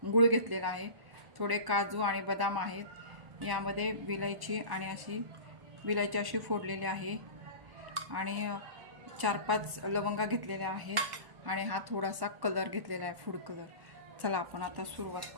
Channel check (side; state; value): left; late; 1.1 ms